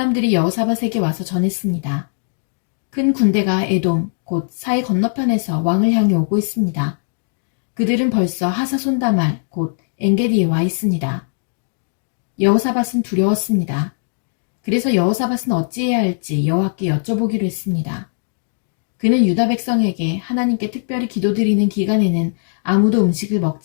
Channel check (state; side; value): silent; right; digital silence